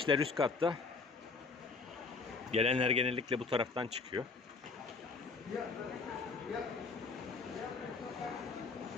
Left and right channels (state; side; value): quieter; right; 4.3 dB